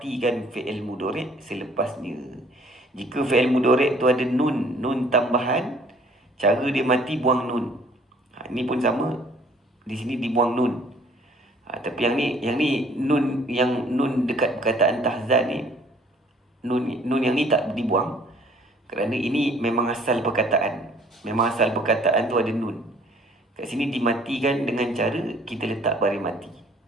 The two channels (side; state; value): both; normal; correlation 0.57